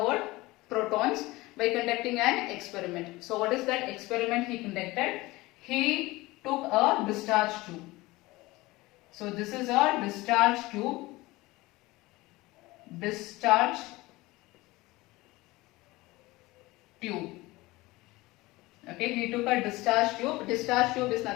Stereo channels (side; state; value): right; quieter; 20.5 dB